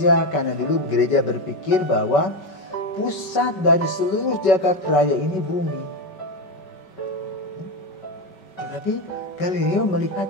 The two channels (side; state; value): right; late; 5.2 ms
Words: karena dulu gereja berpikir bahwa pusat dari seluruh jagat raya ini bumi. Tetapi Galileo